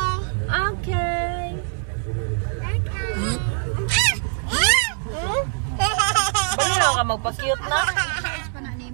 Okay. Bali ka magpa-cute na. Charge pa na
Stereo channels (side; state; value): left; silent; 59 dB below the other